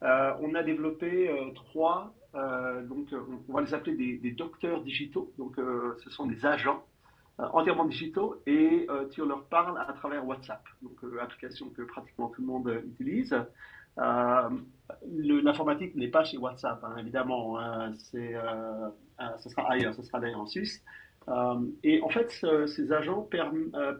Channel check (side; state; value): both; identical; correlation 1.00